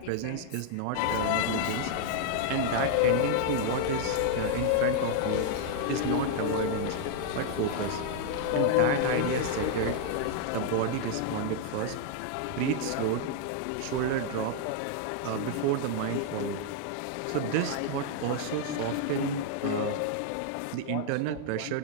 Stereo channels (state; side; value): different; both; correlation 0.00